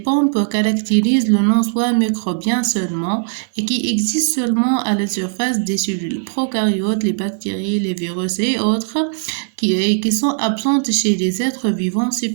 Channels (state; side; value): silent; left; digital silence